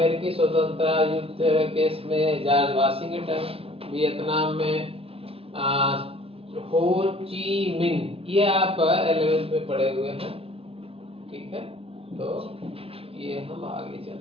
स्वतंत्रता युद्ध केस में जॉर्ज वाशिंगटन, वियतनाम में हो ची मिन, ये आप 11th में पढ़े हुए हैं, ठीक है। तो ये हम आगे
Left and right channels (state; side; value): late; left; 0.28 ms